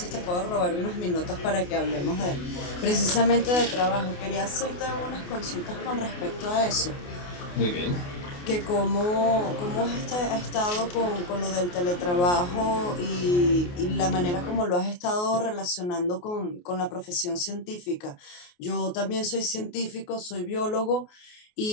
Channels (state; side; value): late; right; 28 ms